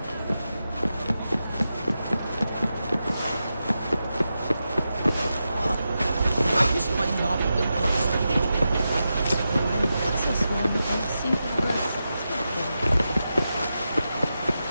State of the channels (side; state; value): both; inverted; correlation -0.89